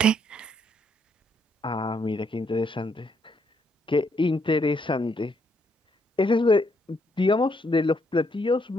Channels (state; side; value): normal; both; correlation 0.73